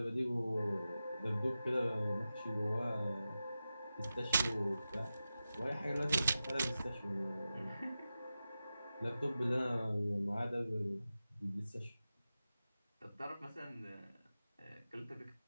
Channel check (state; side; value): inverted; both; correlation -0.93